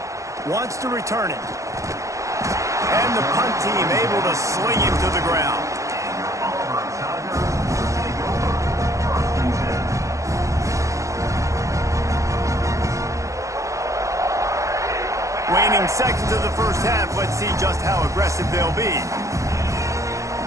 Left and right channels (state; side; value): late; left; 0.15 ms